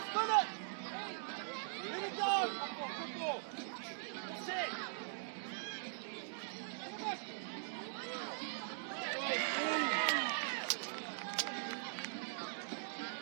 it! Let it go! Good ball! Set!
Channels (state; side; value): silent; left; digital silence